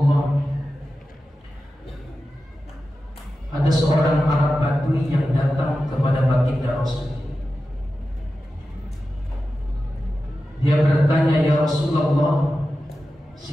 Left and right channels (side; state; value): both; normal; correlation 0.92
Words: Ada seorang Arab Badui yang datang kepada baginda Rasul. Dia bertanya, "Ya Rasulullah,